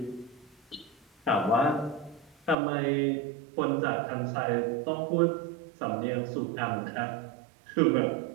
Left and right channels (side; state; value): left; drops out; at 2.6 s